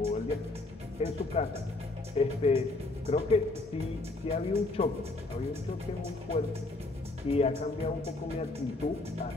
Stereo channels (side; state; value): right; quieter; 3.1 dB